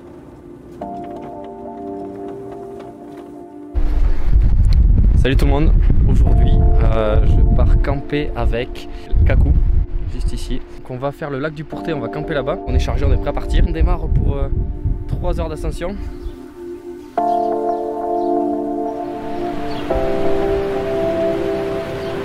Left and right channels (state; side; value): identical; both; correlation 1.00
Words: Salut tout le monde, aujourd'hui je pars camper avec Kakou, juste ici. Donc on va faire le lac du Pourté, on va camper là-bas. On est chargé, on est prêt à partir. On démarre pour 3 heures d'ascension.